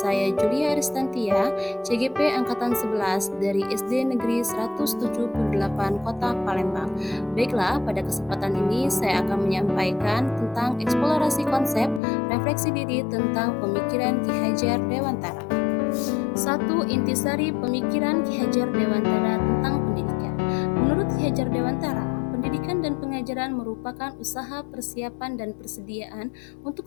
Julia Aristantia, CGP Angkatan 11 dari SD Negeri 178 Kota Palembang. Baiklah, pada kesempatan ini saya akan menyampaikan tentang eksplorasi konsep refleksi diri tentang pemikiran Ki Hajar Dewantara. 1. Intisari pemikiran Ki Hajar Dewantara tentang pendidikan. Menurut Ki Hajar Dewantara, pendidikan dan pengajaran merupakan usaha persiapan dan persediaan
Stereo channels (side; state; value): right; drops out; at 12.0 s